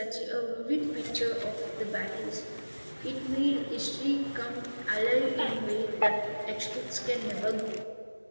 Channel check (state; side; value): inverted; both; correlation -1.00